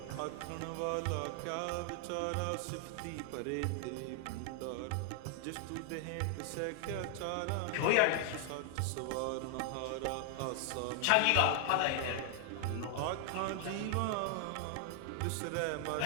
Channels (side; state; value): both; different; correlation 0.00